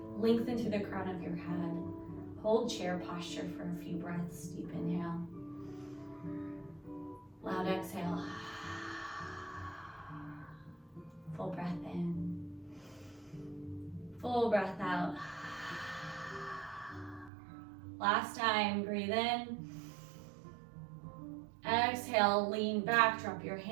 Lengthen through the crown of your head. Hold chair posture for a few breaths. Deep inhale. Loud exhale. Full breath in. Full breath out. Last time, breathe in. Exhale, lean back, drop your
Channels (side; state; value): left; drops out; at 17.3 s